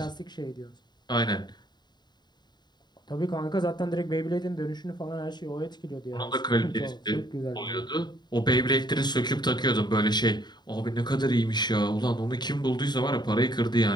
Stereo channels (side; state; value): right; late; 0.21 ms